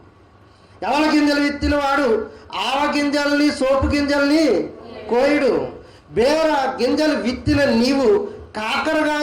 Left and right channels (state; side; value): identical; both; correlation 1.00